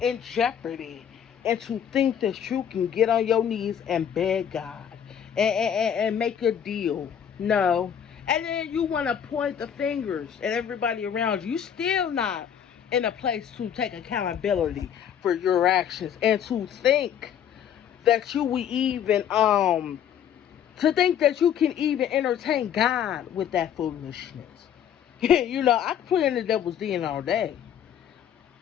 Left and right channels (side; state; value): right; quieter; 8.9 dB